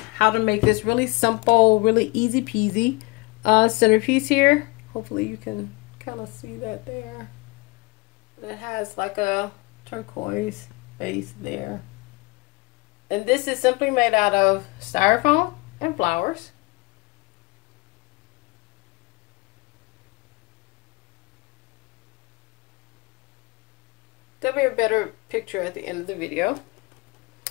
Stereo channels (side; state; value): right; quieter; 24.6 dB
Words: how to make this really simple, really easy peasy centerpiece here. Hopefully you can kind of see that there. It has like a turquoise base there. And this is simply made out of styrofoam and flowers. There'll be a better picture at the end of the video.